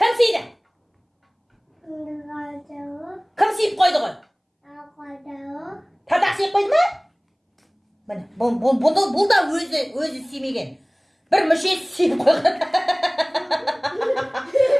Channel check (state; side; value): identical; both; correlation 1.00